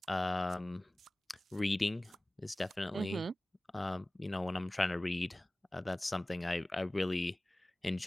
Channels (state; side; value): normal; both; correlation 0.98